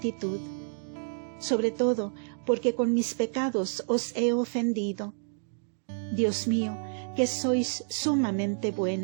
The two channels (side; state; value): left; silent; digital silence